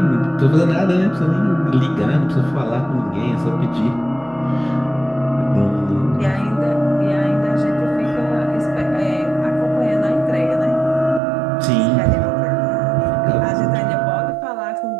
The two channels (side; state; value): left; drops out; at 11.2 s